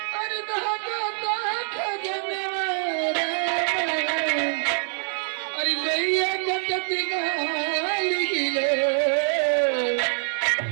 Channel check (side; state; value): left; silent; digital silence